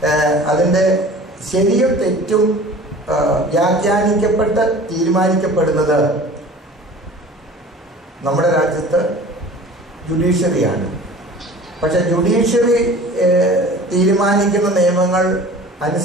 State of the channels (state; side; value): normal; both; correlation 0.43